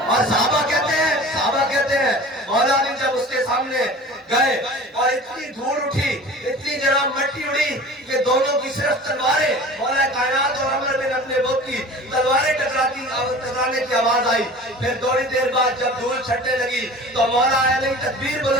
اور صحابہ کہتے ہیں مولا علی جب اس کے سامنے گئے اور اتنی دھول اٹھی، اتنی جناب مٹی اڑی کہ دونوں کی صرف تلواریں، مولا کائنات اور عمر بن عبد الوہاب کی تلواریں ٹکرانے کی آواز آئی۔ پھر تھوڑی دیر بعد جب دھول چھٹنے لگی تو مولا علی تکبیر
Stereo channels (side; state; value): both; normal; correlation 0.40